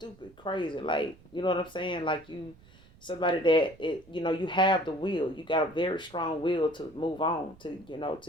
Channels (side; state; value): right; noise; rumble, 25 dB below the sound